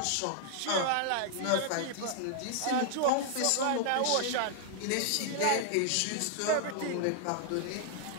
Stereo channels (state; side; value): different; both; correlation 0.00